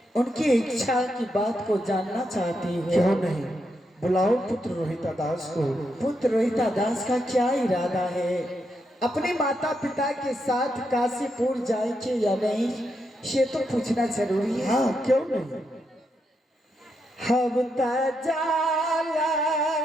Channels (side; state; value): both; normal; correlation 0.82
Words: उनकी इच्छा की बात को जानना चाहती हूँ। क्यों नहीं, बुलाओ पुत्र रोहिता दास को। पुत्र रोहिता दास का क्या इरादा है? अपने माता पिता के साथ काशीपुर जाएंगे या नहीं, ये तो पूछना जरूरी है। हाँ क्यों नहीं। हम जाला